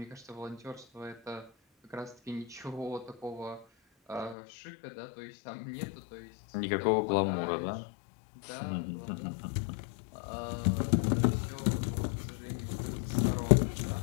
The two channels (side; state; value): right; drops out; at 4.4 s